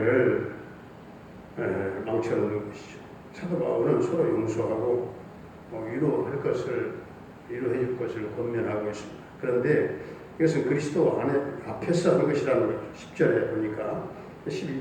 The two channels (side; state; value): both; identical; correlation 1.00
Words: 망쳐놓는 것이죠. 사도 바울은 서로 용서하고 위로해 줄 것을 권면하고 있습니다. 그런데 이것은 그리스도 앞에서 하는 것이라는 거죠. 10절에 보니까